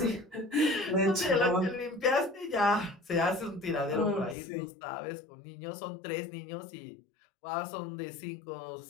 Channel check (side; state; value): right; drops out; at 4.4 s